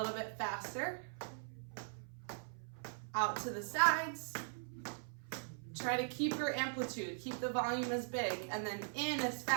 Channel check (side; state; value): left; silent; 51 dB below the other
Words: bit faster. Out to the sides. Try to keep your amplitude, keep the volume as big, and then in as